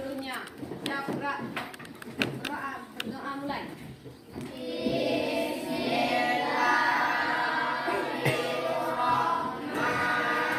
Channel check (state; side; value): identical; both; correlation 1.00